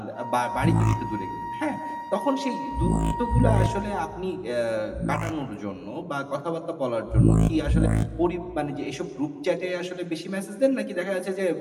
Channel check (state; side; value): identical; both; correlation 1.00